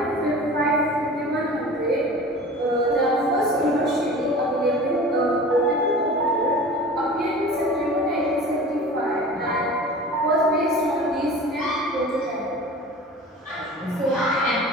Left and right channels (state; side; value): normal; both; correlation 0.39